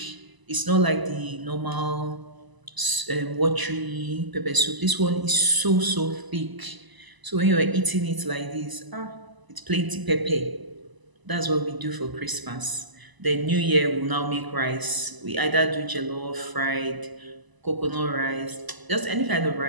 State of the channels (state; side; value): late; left; 1.0 ms